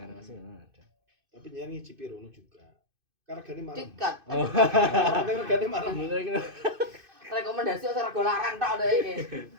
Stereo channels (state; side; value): late; left; 2.6 ms